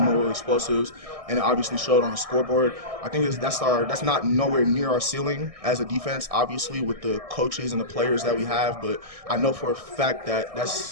explosives, and it obviously showed on the scoreboard. I think that's not nowhere near our ceiling as a defense, obviously, with the coaches and the players that we have. But I know for a fact that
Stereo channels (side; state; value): left; late; 1.6 ms